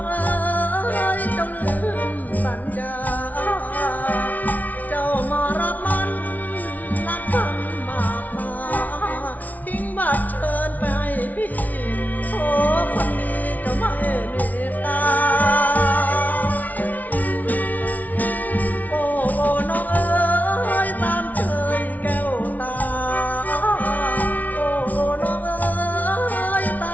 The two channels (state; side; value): late; right; 0.075 ms